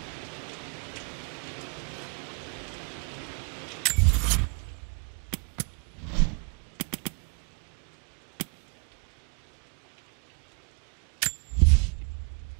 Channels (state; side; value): quieter; left; 34.5 dB